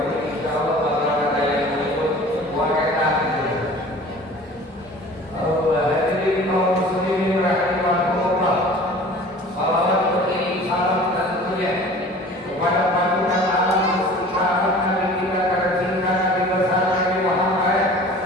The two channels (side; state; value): both; normal; correlation 0.44